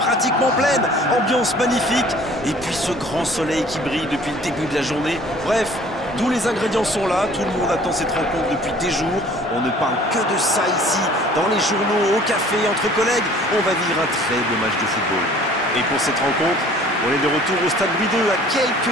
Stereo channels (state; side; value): normal; both; correlation 0.52